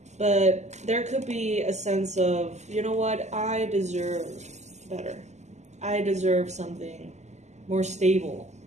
But there could be a sense of, you know what, I deserve better. I deserve something more stable,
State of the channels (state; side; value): late; left; 0.33 ms